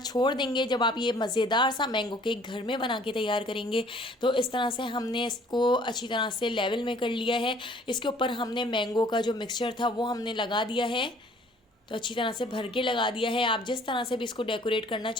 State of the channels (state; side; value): normal; both; correlation 0.56